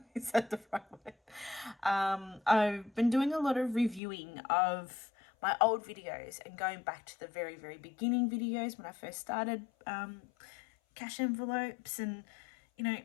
is that the right word? I've been doing a lot of reviewing of my old videos and going back to the very, very beginning videos when I first started cash envelopes, and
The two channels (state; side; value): drops out; right; at 4.0 s